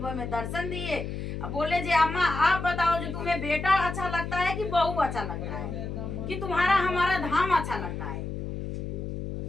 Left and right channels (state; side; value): noise; left; hum, 5 dB below the sound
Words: में दर्शन दिए, बोले जी अम्मा आप बताओ जो तुम्हें बेटा अच्छा लगता है कि बहू अच्छा लगता है, कि तुम्हारा हमारा धाम अच्छा लगता है,